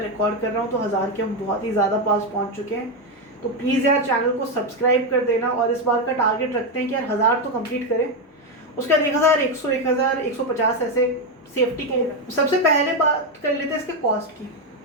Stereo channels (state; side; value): normal; both; correlation 0.07